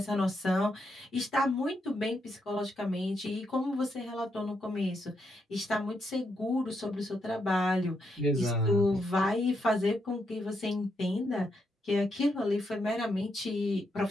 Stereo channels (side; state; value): both; normal; correlation 0.80